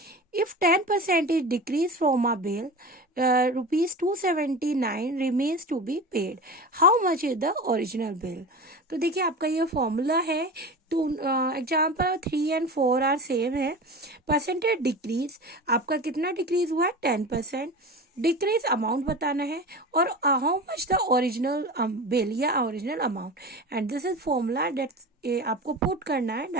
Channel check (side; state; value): both; normal; correlation 0.31